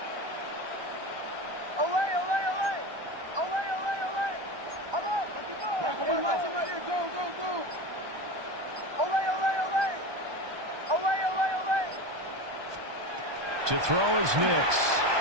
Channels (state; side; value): late; left; 1.2 ms